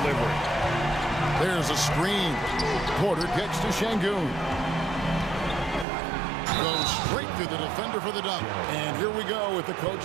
There's a screen. Porter kicks to Şengün. Goes straight through the defender for the dunk. And here we go with the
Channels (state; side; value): drops out; left; at 5.9 s